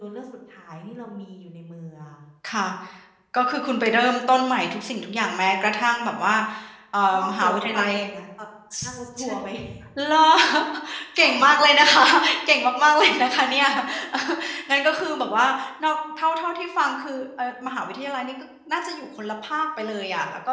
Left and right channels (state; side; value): identical; both; correlation 1.00